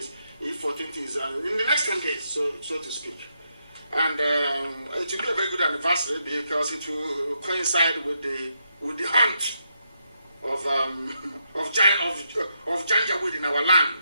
if 14th is in the next 10 days, so to speak. And it will be a very good anniversary because it will coincide with the hunt of Janjaweed in our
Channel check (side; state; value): both; inverted; correlation -0.81